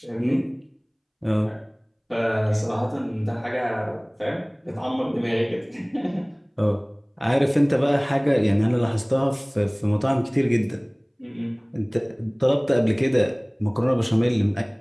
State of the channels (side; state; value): both; identical; correlation 1.00